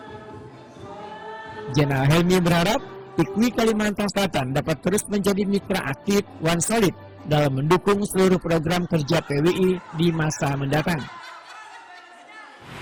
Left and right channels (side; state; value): both; identical; correlation 1.00